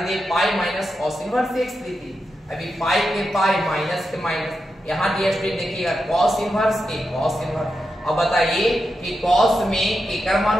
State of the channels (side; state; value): both; normal; correlation 0.87